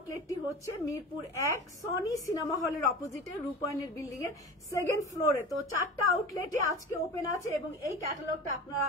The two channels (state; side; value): normal; both; correlation 0.33